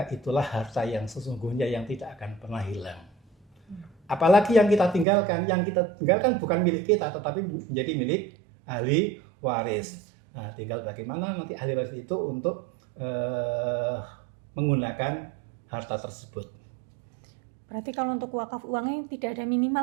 itulah harta yang sesungguhnya yang tidak akan pernah hilang. Apalagi yang kita tinggalkan bukan milik kita, tetapi menjadi milik ahli waris. Nah, tinggal bagaimana nanti ahli waris itu untuk menggunakan harta tersebut. Berarti kalau untuk wakaf uangnya tidak ada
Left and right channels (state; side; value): drops out; left; at 5.1 s